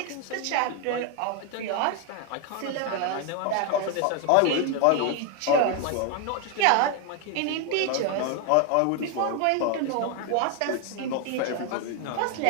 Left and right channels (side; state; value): both; different; correlation 0.01